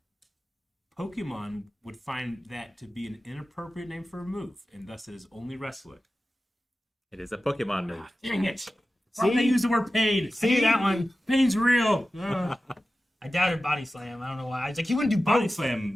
Pokemon would find that to be an inappropriate name for a move, and thus it is only wrestling. It is a Pokemon move. Dang it! Why did they use the word pain? See that one? Pain's real. Ugh. I doubted Body Slam. I don't know why. I was like, he wouldn't do both. Body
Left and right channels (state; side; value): normal; both; correlation 0.94